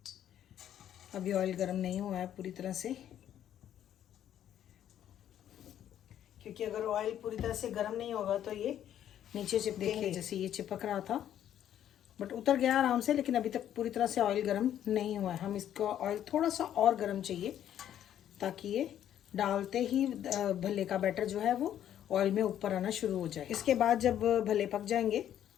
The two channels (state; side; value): quieter; right; 10.8 dB